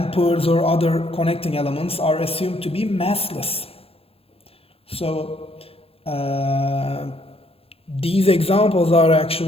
or other connecting elements are assumed to be massless. So these examples are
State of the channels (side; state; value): right; late; 0.28 ms